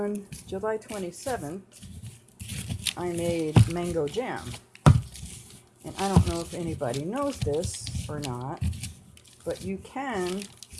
July 27th, I made mango jam. And I don't know if anybody knows this or not, but you can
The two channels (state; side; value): identical; both; correlation 1.00